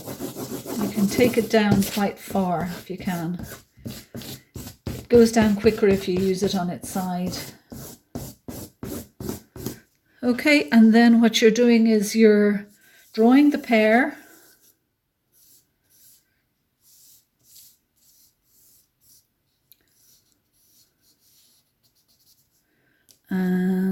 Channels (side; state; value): both; identical; correlation 1.00